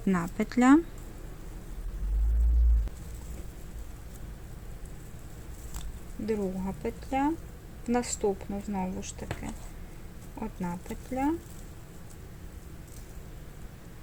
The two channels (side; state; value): both; identical; correlation 1.00